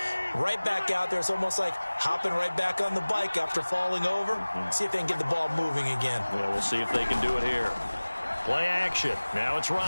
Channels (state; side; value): inverted; both; correlation -1.00